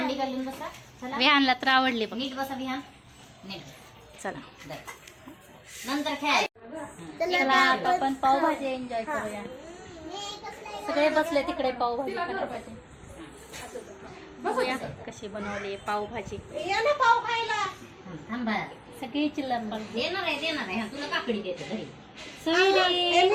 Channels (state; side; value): identical; both; correlation 1.00